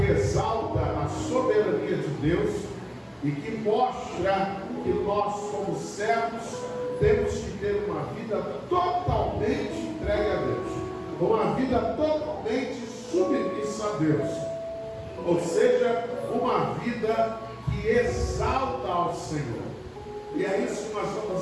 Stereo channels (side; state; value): both; identical; correlation 1.00